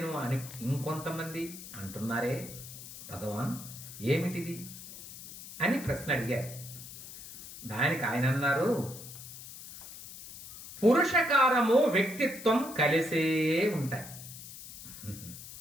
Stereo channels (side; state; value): left; noise; hiss, 13 dB below the sound